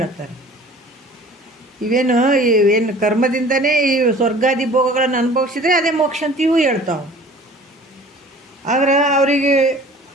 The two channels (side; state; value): both; normal; correlation 0.47